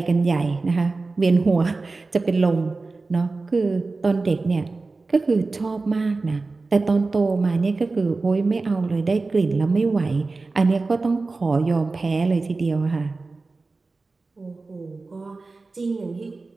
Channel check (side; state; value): left; quieter; 3.7 dB